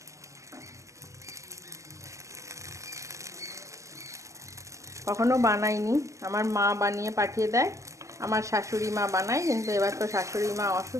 কখনো বানাইনি, আমার মা বানিয়ে পাঠিয়ে দেয়, আমার শাশুড়ি মা বানায়, কিন্তু এবার তো শাশুড়ি মা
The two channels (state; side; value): late; left; 0.15 ms